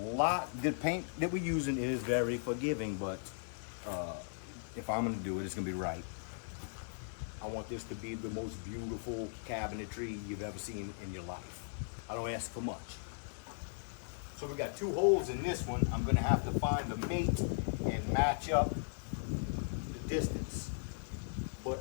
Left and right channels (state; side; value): silent; right; digital silence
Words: paint that we're using is very forgiving, but if I'm gonna do it, it's gonna be right. I want this to be the most beautiful cabinetry you've ever seen in your life. I don't ask for much. So we got 2 holes in this one. I'm gonna have to find a mate and match up the distance.